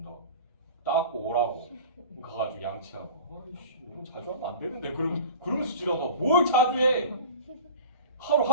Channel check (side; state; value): both; inverted; correlation -0.38